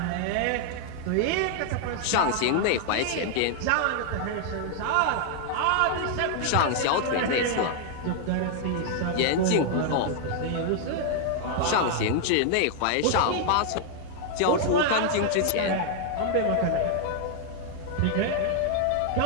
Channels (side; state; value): both; different; correlation 0.00